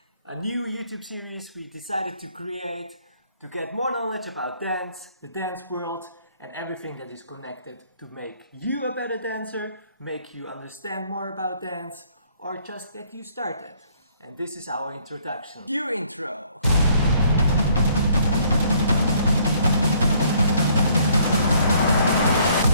a new YouTube series we decided to create to get more knowledge about dance, the dance world, and everything that is connected to make you a better dancer, make you understand more about dance, or just get you started. And this is our introduction. Cue intro!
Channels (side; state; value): both; inverted; correlation -0.63